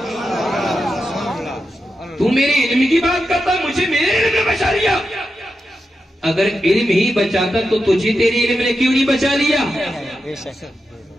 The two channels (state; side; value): normal; both; correlation 0.89